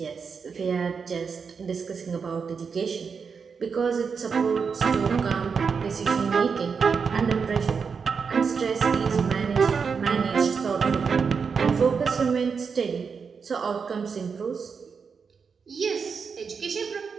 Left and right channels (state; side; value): quieter; left; 5.7 dB